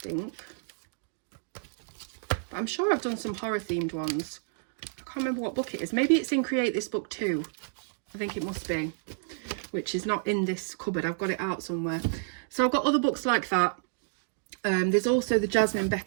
But I'm sure I've done some horror themed ones. I can't remember what book it is. Maybe it's in Create This Book too. I think it must be, which is not in this cupboard. I've got it out somewhere. So I've got other books like that. There's also the Jasmine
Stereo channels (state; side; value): silent; left; digital silence